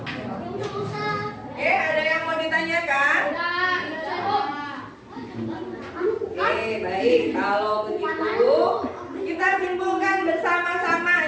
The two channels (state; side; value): identical; both; correlation 1.00